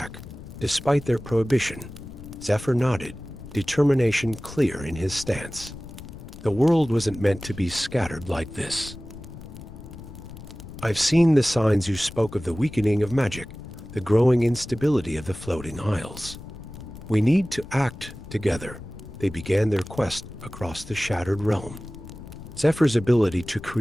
despite their prohibition. Zephyr nodded, determination clear in his stance. The world wasn't meant to be scattered like this. I've seen the signs you spoke of, the weakening of magic, the growing instability of the floating isles. We need to act together. They began their quest across the shattered realm. Zephyr's ability to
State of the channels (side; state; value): left; noise; rumble, 14 dB below the sound